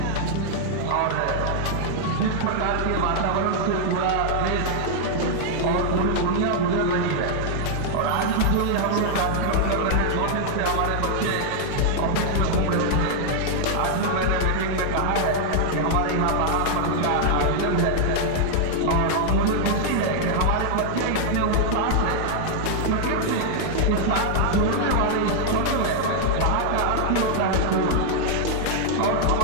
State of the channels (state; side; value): different; both; correlation 0.00